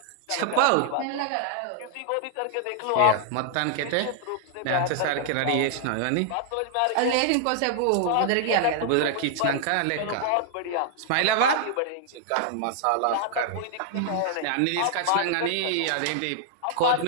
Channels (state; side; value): different; both; correlation -0.01